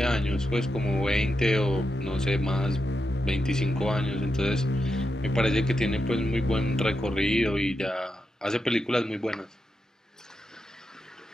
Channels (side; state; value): both; normal; correlation 0.87